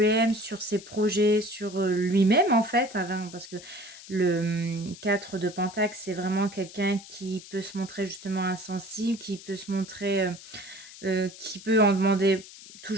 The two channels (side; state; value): left; noise; hiss, 17 dB below the sound